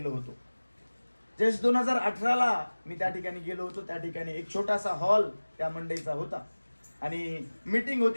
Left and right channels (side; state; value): both; inverted; correlation -1.00